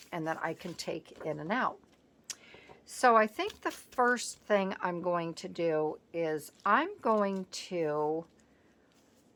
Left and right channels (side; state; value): both; identical; correlation 1.00